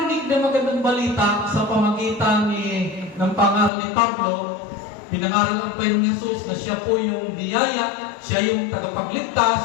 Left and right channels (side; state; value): right; drops out; at 3.7 s